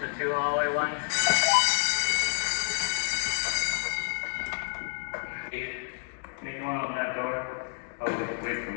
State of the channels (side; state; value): right; silent; digital silence